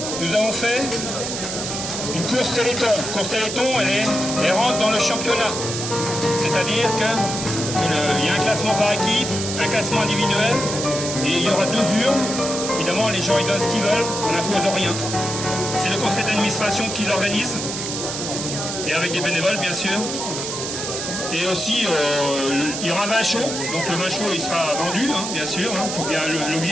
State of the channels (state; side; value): noise; right; hiss, 5 dB below the sound